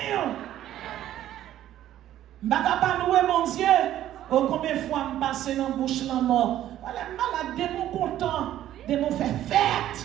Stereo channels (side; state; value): left; quieter; 12.5 dB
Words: Je ne vais pas louer mon Dieu. Oh, combien de fois je passe dans la bouche la mort. Voilà, malade, des mots contents, des mots fait fête.